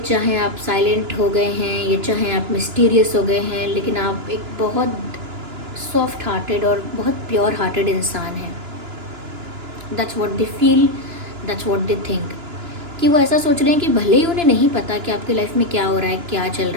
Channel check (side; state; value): left; late; 2.9 ms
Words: आप साइलेंट हो गए हैं या चाहे आप मिस्टीरियस हो गए हैं, लेकिन आप एक बहुत सॉफ्ट हार्टेड और बहुत प्योर हार्टेड इंसान हैं। That's what they feel, that's what they think, कि वो ऐसा सोच रहे हैं कि भले ही उन्हें नहीं पता कि आपकी लाइफ में क्या हो रहा है, क्या चल